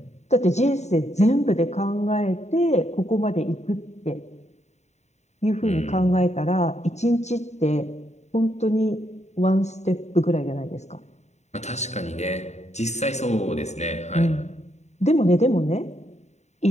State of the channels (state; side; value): late; right; 0.33 ms